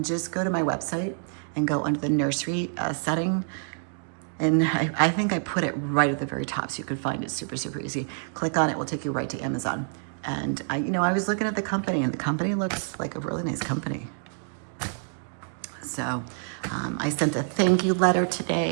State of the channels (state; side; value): silent; left; 60 dB below the other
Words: just go to my website and go under the nursery setting. And I think I put it right at the very top so you could find it super, super easy. Click on it, will take you right to Amazon. And I was looking at the company, and the company looks like a really nice company. So I sent a thank you letter